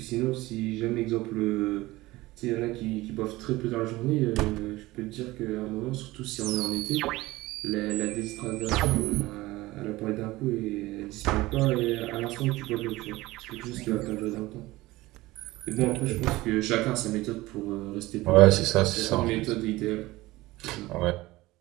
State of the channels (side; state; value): left; quieter; 19.1 dB